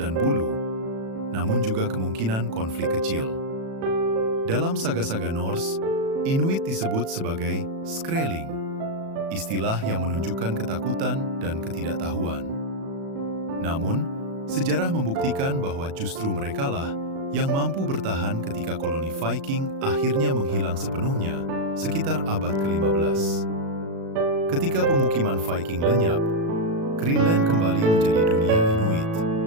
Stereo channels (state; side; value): late; left; 36 ms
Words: bulu, namun juga kemungkinan konflik kecil. Dalam saga-saga Norse, Inuit disebut sebagai skreling, istilah yang menunjukkan ketakutan dan ketidaktahuan. Namun, sejarah membuktikan bahwa justru merekalah yang mampu bertahan ketika koloni Viking akhirnya menghilang sepenuhnya sekitar abad ke-15. Ketika pemukiman Viking lenyap, Greenland kembali menjadi dunia Inuit.